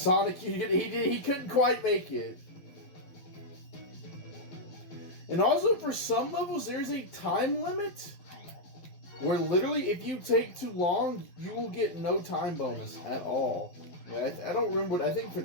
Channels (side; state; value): right; late; 12 ms